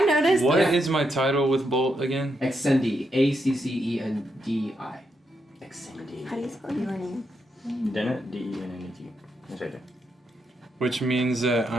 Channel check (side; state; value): both; normal; correlation 0.81